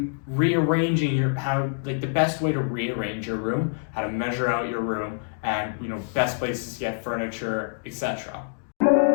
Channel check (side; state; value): right; silent; digital silence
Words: rearranging the best way to rearrange your room, how to measure out your room, and best places to get furniture, etc.